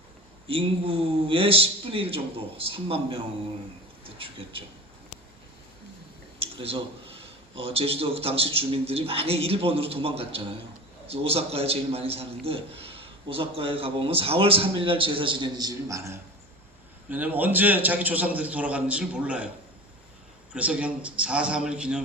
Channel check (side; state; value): both; normal; correlation 0.33